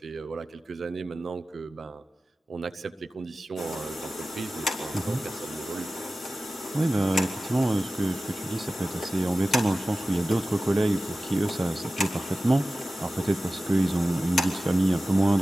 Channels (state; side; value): normal; both; correlation 0.96